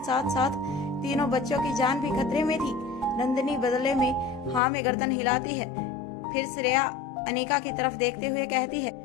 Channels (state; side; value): drops out; right; at 4.6 s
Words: साथ तीनों बच्चों की जान भी खतरे में थी। नंदिनी बदले में हाँ में गर्दन हिलाती है। फिर श्रेया अनिका की तरफ देखते हुए कहती है,